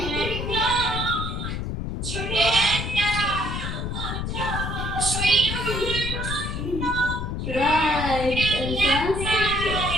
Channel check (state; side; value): noise; left; rumble, 4 dB below the sound